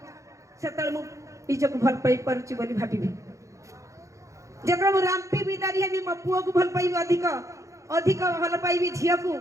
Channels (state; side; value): late; left; 0.15 ms